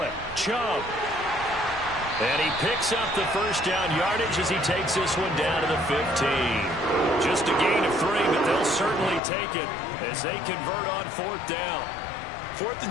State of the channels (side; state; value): right; drops out; at 9.2 s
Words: it. Chubb. And he picks up the first down yardage as he takes this one down to the 15. Just a gain of 3, but they'll certainly take it as they convert on fourth down. 4th